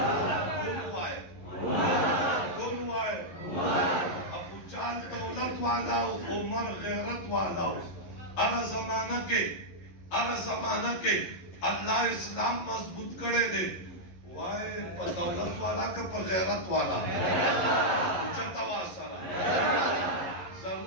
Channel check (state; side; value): late; right; 11 ms